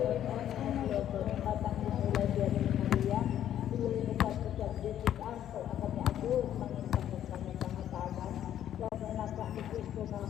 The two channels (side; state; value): right; quieter; 10.9 dB